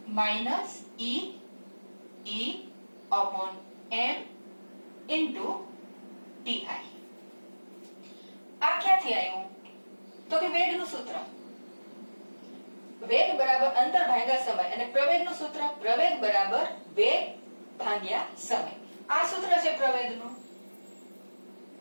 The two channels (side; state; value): both; inverted; correlation -1.00